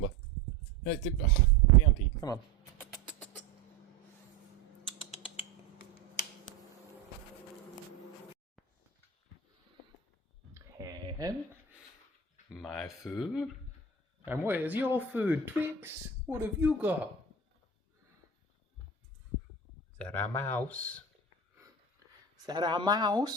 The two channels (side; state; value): left; quieter; 4.8 dB